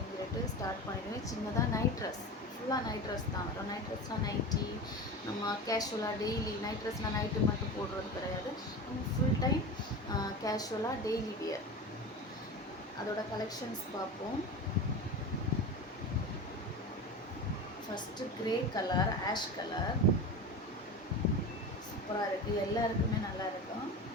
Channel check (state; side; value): normal; both; correlation 0.28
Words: சொல்லிட்டு ஸ்டார்ட் பண்ணிடுவேன். சின்னதாக நைட் ட்ரெஸ், ஃபுல்லாக நைட் ட்ரெஸ் தான் வரும். நைட் ட்ரெஸ்னால் நைட்டி, நம்ம கேஷுவலாக டெய்லி நைட் ட்ரெஸ்னால் நைட்டு மட்டும் போடுறது கிடையாது. நம்ம ஃபுல் டைம் கேஷுவலாக டெய்லி வியர். அதோட கலெக்ஷன்ஸ் பார்ப்போம். First grey colour, ash colour சூப்பராக இருக்குது. எல்லாருக்குமே நல்லா இருக்கும்.